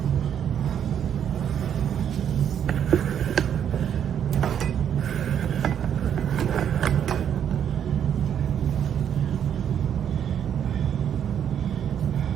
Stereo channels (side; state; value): left; quieter; 9.0 dB